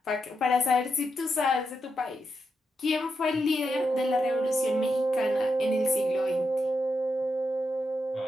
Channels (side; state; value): both; normal; correlation 0.84